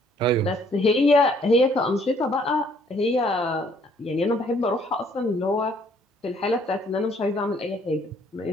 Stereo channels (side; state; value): both; normal; correlation 0.63